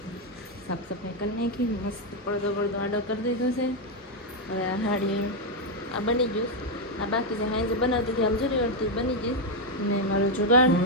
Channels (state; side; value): normal; both; correlation 0.02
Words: સાફ સફાઈ કરી નાખી, મસ્ત પડદો આડો કરી દીધો છે. હવે આ સાડી આ બની ગયું, આ બાકી છે હાઈ જે બનાવતી હતી આમ જોરી વળતી બની ગઈ. ને મારો જુગાડ